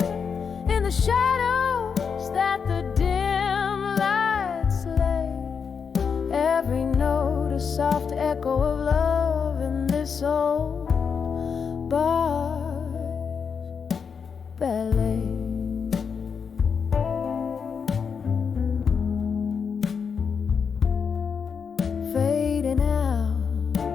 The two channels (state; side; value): quieter; right; 6.2 dB